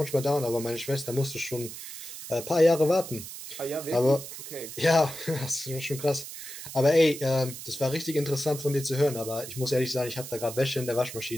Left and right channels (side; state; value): right; noise; hiss, 11 dB below the sound